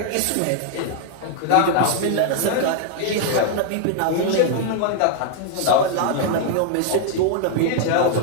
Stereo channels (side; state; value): both; different; correlation 0.00